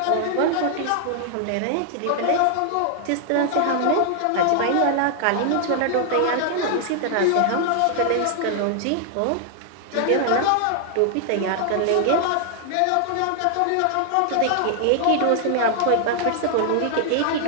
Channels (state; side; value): different; both; correlation 0.00